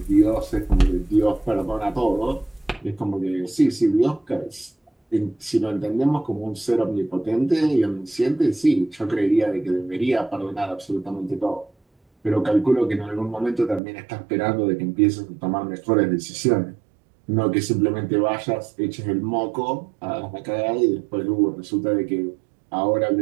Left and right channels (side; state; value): left; drops out; at 13.8 s